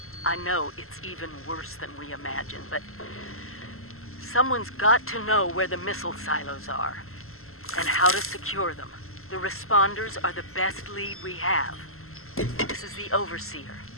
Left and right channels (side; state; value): right; late; 0.62 ms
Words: I know it's even worse than we imagined, but someone's got to know where the missile silos are and how to secure them. The Responders are the best lead we have. This is the Overseer,